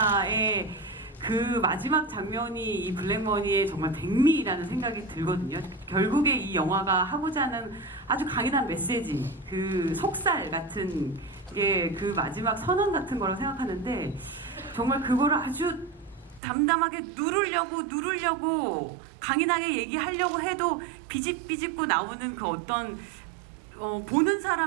그 마지막 장면이 이 블랙머니의 정말 백미라는 생각이 들거든요. 결국에 이 영화가 하고자 하는 아주 강인한 메시지, 그 속살 같은 게 그 마지막 선언 같은 거라고 생각하는데 정말 그거를 아주 담담하게 누르려고 강인하게 얘기하려고 해도 비집비집고 나오는 그 어떤 보는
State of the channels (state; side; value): drops out; left; at 16.4 s